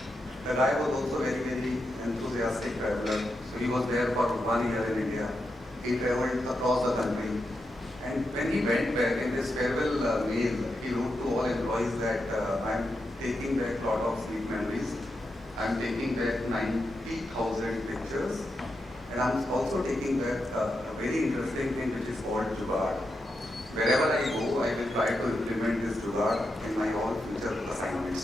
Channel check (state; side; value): normal; both; correlation 0.86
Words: The guy was also very, very enthusiastic traveler. So he was there for 1 year in India. He traveled across the country. And when he went back in his farewell mail, he wrote to all employees that I'm taking back a lot of sweet memories. I'm taking back 90,000 pictures. And I'm also taking back a very interesting thing which is called Jugaad. Wherever I go, I will try to implement this Jugaad in my all future